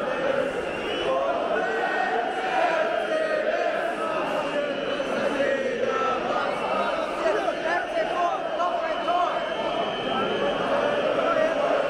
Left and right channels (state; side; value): identical; both; correlation 1.00